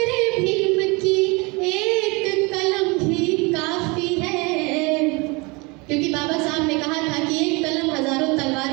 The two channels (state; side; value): quieter; left; 27.2 dB